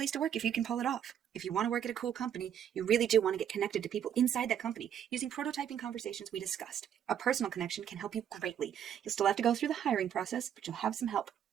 to work if you can pull it off. If you want to work at a cool company, you really do want to get connected to people inside that company using prototyping conversations we discussed. A personal connection can help you greatly. You'll still have to go through the hiring process, but you'll have some help.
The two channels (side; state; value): left; quieter; 9.4 dB